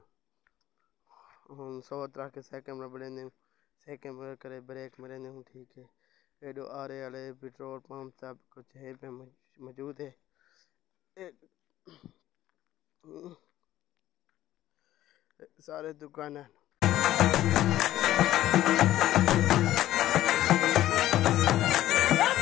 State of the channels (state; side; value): quieter; right; 13.9 dB